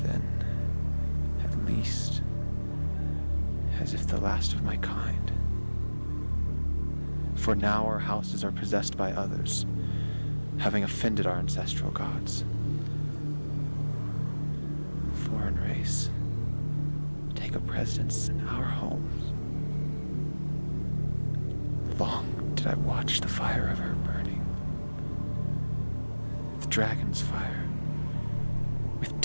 then at least as if the last of my kind. For now our houses are possessed by others, having offended our ancestral gods. Foreign race, take a precedence in our homes. Long did I watch the fire of her burning. The dragon's fire, with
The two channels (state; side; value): inverted; both; correlation -1.00